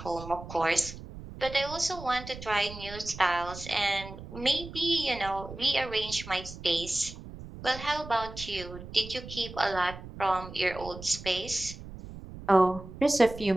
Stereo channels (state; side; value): noise; right; rumble, 13 dB below the sound